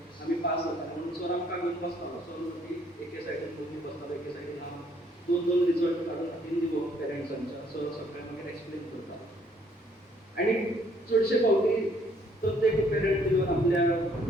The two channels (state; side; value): normal; both; correlation 0.65